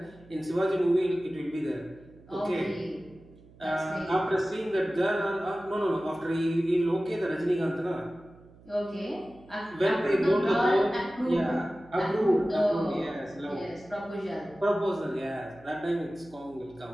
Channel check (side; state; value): right; noise; hum, 24 dB below the sound